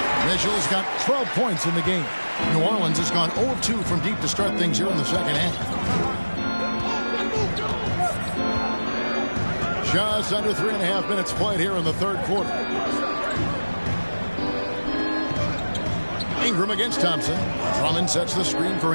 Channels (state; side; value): inverted; both; correlation -1.00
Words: Mitchell's got 12 points in the game. New Orleans has gone 0 of 2 from deep to start things here in the second half. Just under 3.5 minutes played here in the third quarter. Ingram against Thompson. Drummond sets the screen for